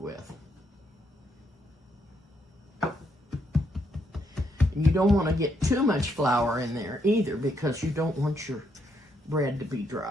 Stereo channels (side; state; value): both; normal; correlation 0.76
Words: And you don't want to get too much flour in there either because you don't want your bread to be